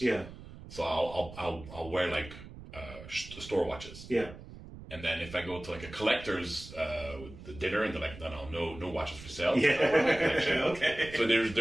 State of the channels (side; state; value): right; noise; rumble, 15 dB below the sound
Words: Yeah. so I'll wear like store watches. Yeah. And then if I go to like a collector's dinner and they're like, no watches for sale. Yeah. Okay. So there's